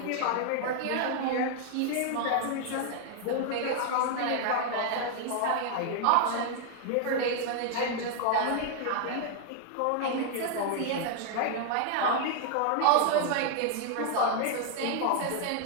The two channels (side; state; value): both; different; correlation 0.00